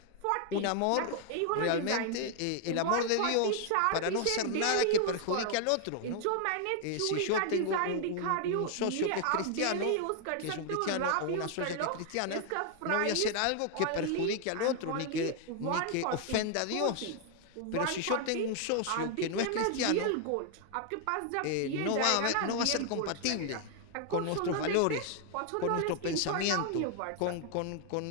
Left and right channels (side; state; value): both; different; correlation 0.00